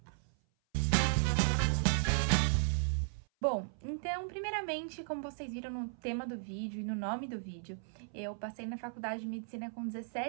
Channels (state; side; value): silent; left; 54 dB below the other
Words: Bom, então, primeiramente, como vocês viram no tema do vídeo e no nome do vídeo, eu passei na faculdade de medicina com